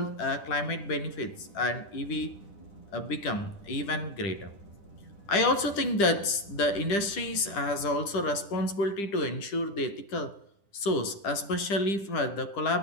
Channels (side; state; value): right; late; 10 ms